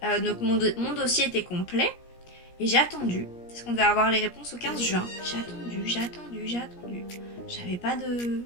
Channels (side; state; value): right; late; 17 ms